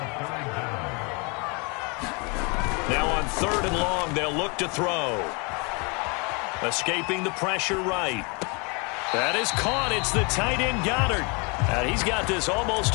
Now on 3rd and long, they'll look to throw. Escaping the pressure right. That is caught. It's the tight end Goddard. And he's got this almost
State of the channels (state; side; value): quieter; right; 31.6 dB